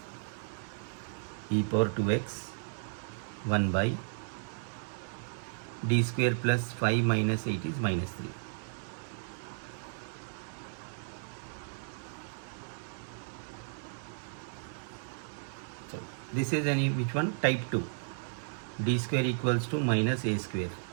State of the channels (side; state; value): left; silent; 55 dB below the other